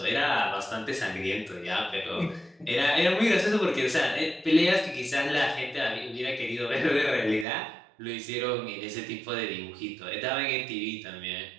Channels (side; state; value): left; drops out; at 7.5 s